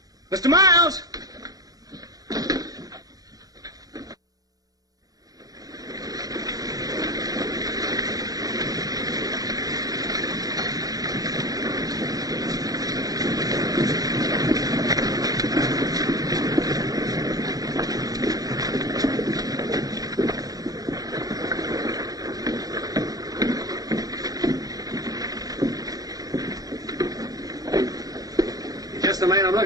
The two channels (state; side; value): late; left; 0.18 ms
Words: Mr. Miles! The man I'm